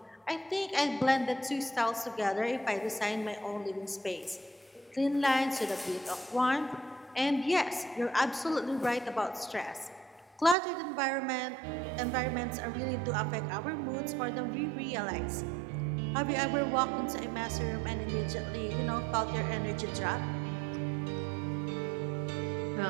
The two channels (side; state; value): left; drops out; at 10.6 s